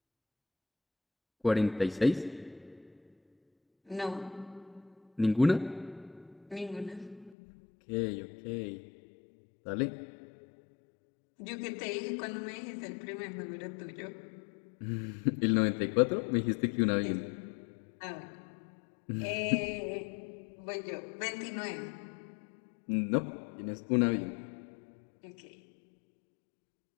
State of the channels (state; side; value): drops out; right; at 7.4 s